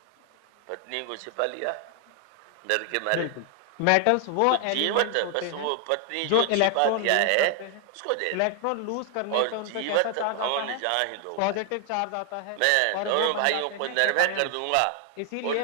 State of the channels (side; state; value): both; different; correlation 0.00